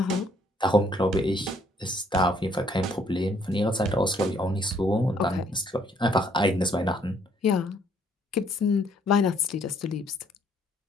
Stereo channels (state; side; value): normal; both; correlation 0.65